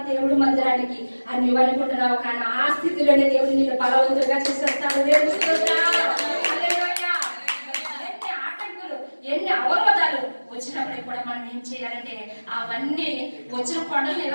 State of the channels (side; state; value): both; inverted; correlation -1.00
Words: దేవుడు మందిరానికి అని నువ్వు అనుకుంటున్నావు. కానీ ఆ స్థితిలోనే దేవుడు నిన్ను బలవంతులుగా చేసేస్తాడు. ఎన్ని ఆటంకులు, ఎన్ని అవరోధాలు వచ్చినప్పటికి కూడా మనం ఏం చేయాలంటే అవన్నీ వచ్చిన కొండలు